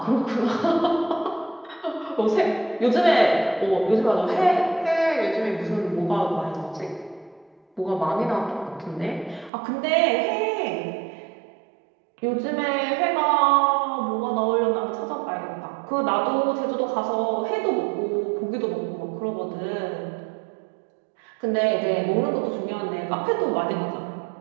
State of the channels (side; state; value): left; drops out; at 9.5 s